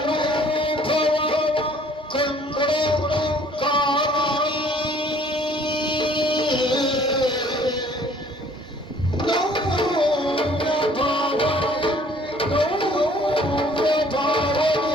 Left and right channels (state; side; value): normal; both; correlation 0.56